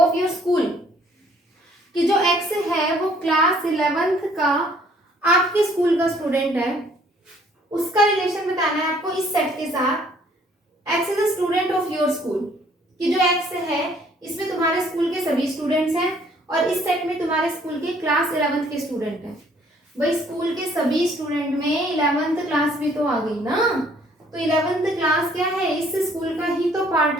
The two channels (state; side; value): normal; both; correlation 0.61